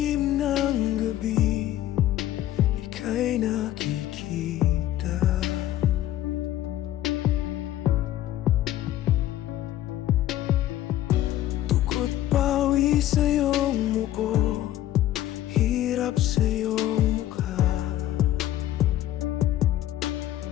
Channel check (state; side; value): quieter; right; 13.3 dB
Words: ng gabi, ika'y nakikita. Dugo't pawis sa iyong muko, hirap sa iyong mukha.